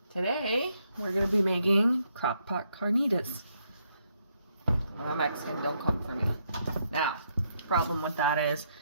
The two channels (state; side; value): inverted; both; correlation -0.76